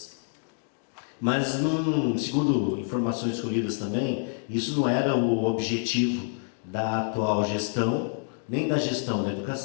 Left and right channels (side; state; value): right; silent; digital silence